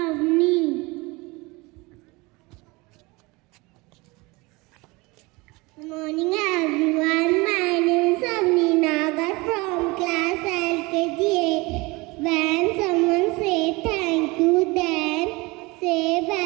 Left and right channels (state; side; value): quieter; left; 24.3 dB